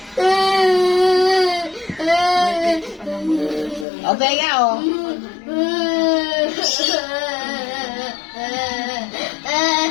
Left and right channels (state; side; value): drops out; right; at 3.9 s